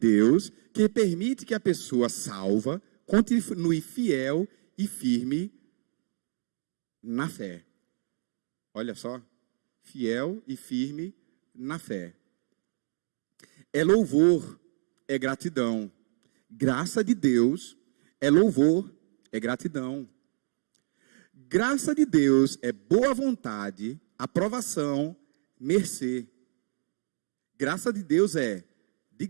que permite que a pessoa salva continue fiel e firme na fé. Olha só. Fiel e firme na fé. É louvor, é gratidão. Graça de Deus é louvor, é gratidão. Graça de Deus é boa vontade, aprovação, mercê. Graça de Deus é de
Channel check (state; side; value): silent; left; digital silence